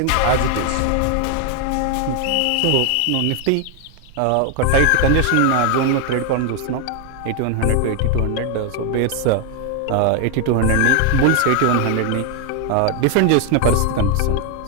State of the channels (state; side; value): different; both; correlation 0.01